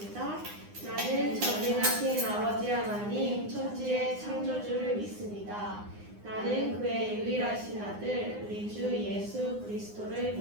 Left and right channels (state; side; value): late; left; 9.7 ms